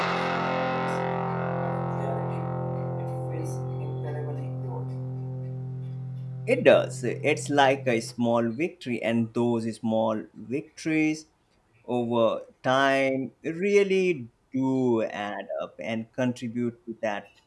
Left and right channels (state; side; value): identical; both; correlation 1.00